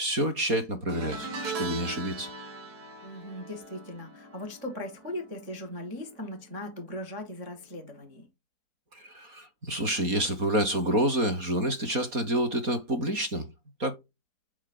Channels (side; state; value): left; late; 4.2 ms